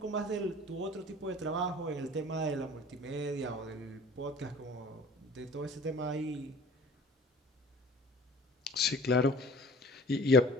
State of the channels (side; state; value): both; normal; correlation 0.46